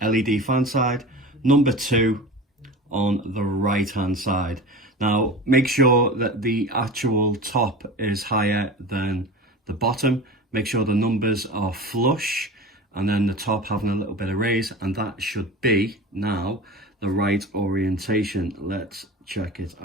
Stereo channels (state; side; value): normal; both; correlation 0.32